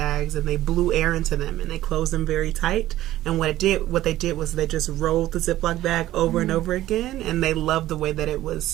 and they blew air into them and they closed them very tight. And what they did was they just rolled the Ziploc bag over and over again, and they loved the way that it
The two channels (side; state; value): left; quieter; 14.6 dB